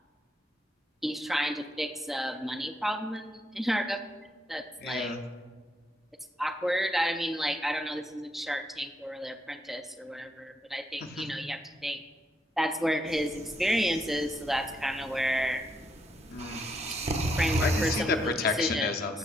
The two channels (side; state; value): both; normal; correlation 0.77